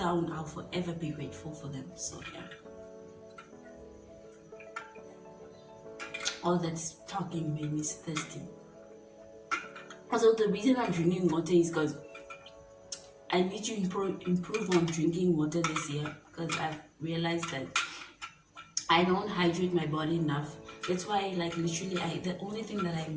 I'll forever be grateful for them. So yeah. All that's talking made me thirsty. Also, the reason I'm drinking water is because I need to improve on drinking water this year, because I've realized that I don't hydrate my body enough. That's why, like, literally, the only thing that I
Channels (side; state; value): both; identical; correlation 1.00